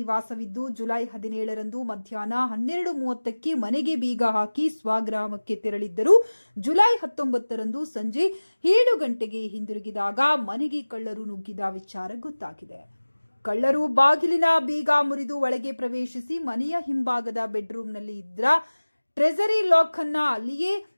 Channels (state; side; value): inverted; both; correlation -1.00